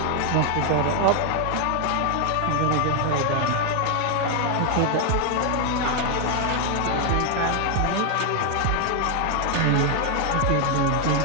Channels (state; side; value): different; both; correlation 0.01